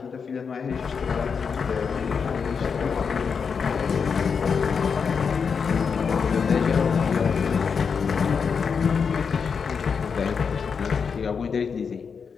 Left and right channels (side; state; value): right; quieter; 6.0 dB